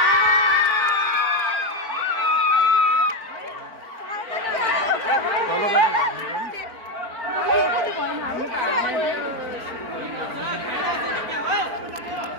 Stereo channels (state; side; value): late; left; 4.4 ms